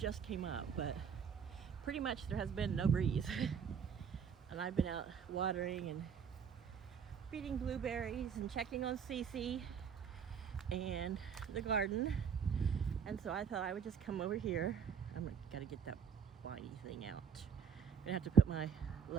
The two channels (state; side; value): quieter; left; 7.0 dB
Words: came up, but pretty much there has been no breeze. And I've been out watering and feeding blueberries and checking on Cece and the garden, and so I thought I would just come over here. Gotta get that whiny thing out. I'm gonna have to put my